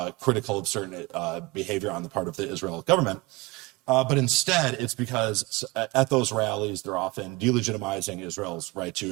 critical of certain behavior on the part of the Israel government. But instead, it's because at those rallies, they're often delegitimizing Israel's right to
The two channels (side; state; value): left; quieter; 23.5 dB